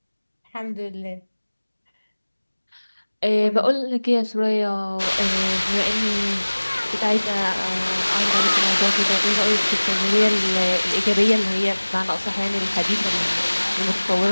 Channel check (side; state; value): both; inverted; correlation -1.00